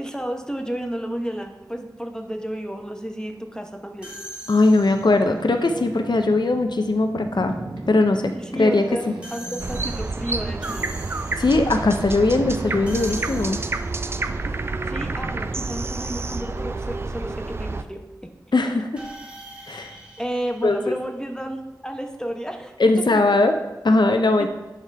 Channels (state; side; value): normal; both; correlation 0.81